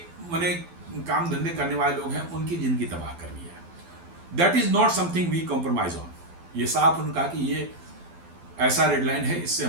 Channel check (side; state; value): left; late; 12 ms